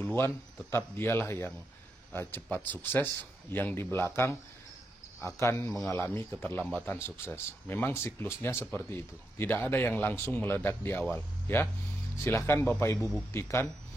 tetap dialah yang cepat sukses, yang di belakang akan mengalami keterlambatan sukses. Memang siklusnya seperti itu. Tidak ada yang langsung meledak di awal, ya. Silahkan Bapak Ibu buktikan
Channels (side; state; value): both; normal; correlation 0.84